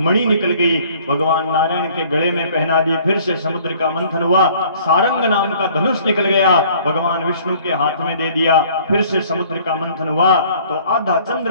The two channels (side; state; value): both; inverted; correlation -0.55